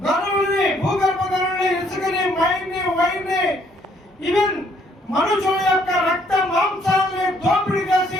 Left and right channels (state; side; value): normal; both; correlation 0.66